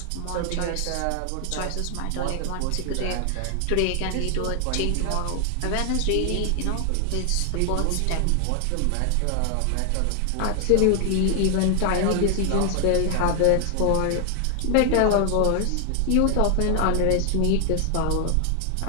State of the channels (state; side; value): different; both; correlation 0.00